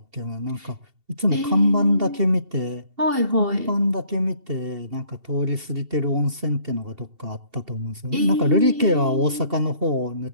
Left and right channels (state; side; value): late; left; 2.7 ms